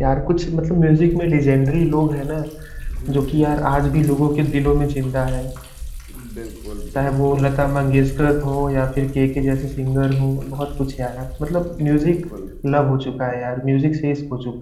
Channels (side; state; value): both; identical; correlation 1.00